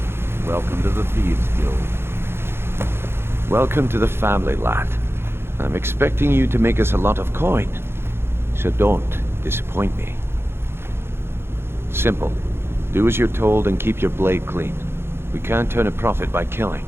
Welcome to the Thieves Guild. Welcome to the family, lad. I'm expecting you to make us a lot of coin. So don't disappoint me. Simple. Do as you're told and keep your blade clean. We can't turn a profit by killing.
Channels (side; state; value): left; late; 0.12 ms